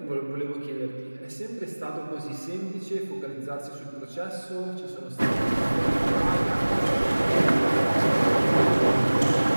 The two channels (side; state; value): both; inverted; correlation -1.00